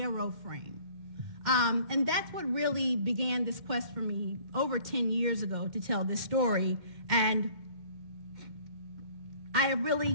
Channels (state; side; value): late; left; 2.1 ms